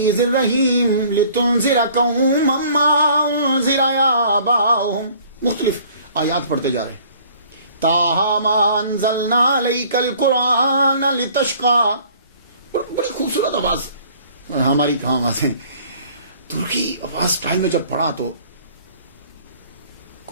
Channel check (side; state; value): both; inverted; correlation -0.54